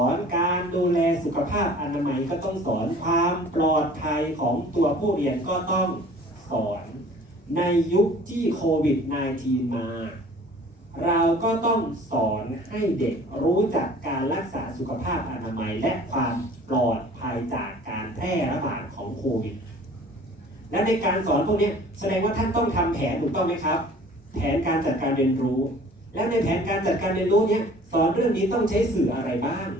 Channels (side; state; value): both; normal; correlation 0.49